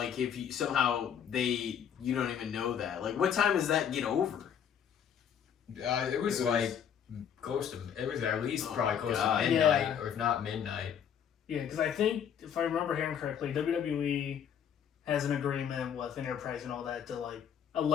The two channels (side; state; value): right; quieter; 8.5 dB